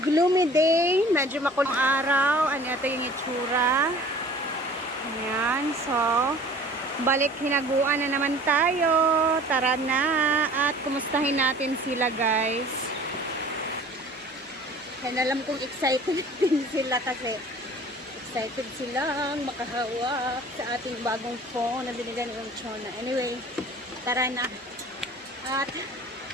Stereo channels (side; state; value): both; normal; correlation 0.47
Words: gloomy day, medyo makulong araw. Ano ito yung itsura. Ayan, so balik hinaguan na naman tayo. Tara na at kumustahin natin sila guys. And alam kong excited din sila kasi excited silang makahawak sa ating bagong phone na binigyan ng Chona. Anyway, tara na at